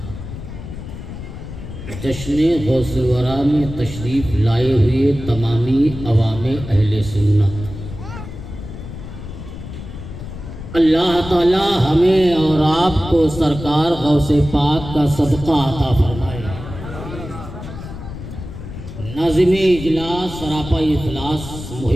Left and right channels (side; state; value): left; noise; rumble, 11 dB below the sound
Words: جشن غوث الورا میں تشریف لائے ہوئے تمامی عوام اہل سنت، اللہ تعالی ہمیں اور آپ کو سرکار غوث پاک کا صدقہ عطا فرمائے۔ ناظم اجلاس سراپا اخلاص